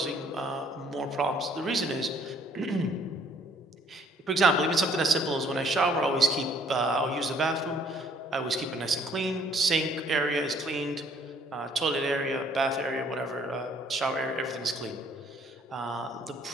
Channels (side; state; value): both; normal; correlation 0.61